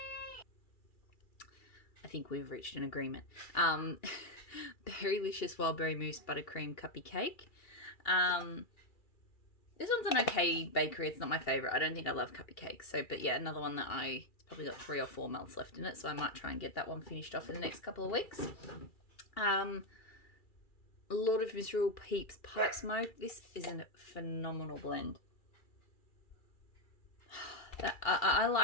I think we've reached an agreement. Berrylicious Wildberry Mousse Buttercream Cuppy Cake. This one's an okay bakery. It's not my favourite. I don't think I love cuppy cakes. So, but yeah, another one that it's probably got 3 or 4 melts left in it. So I might try and get that one finished off in the next couple of weeks. Lord of Misrule Peeps Pipe Smoke. This is a phenomenal blend. I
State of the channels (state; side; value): late; right; 2.3 ms